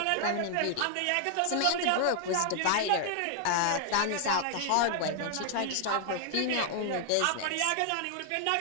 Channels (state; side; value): different; both; correlation 0.00